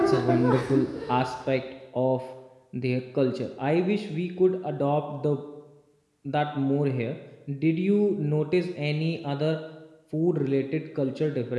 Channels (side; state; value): both; identical; correlation 1.00